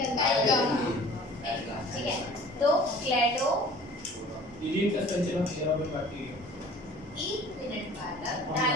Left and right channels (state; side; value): normal; both; correlation 0.47